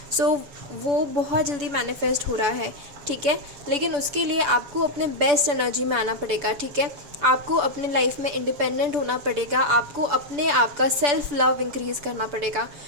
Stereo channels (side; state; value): left; late; 6.9 ms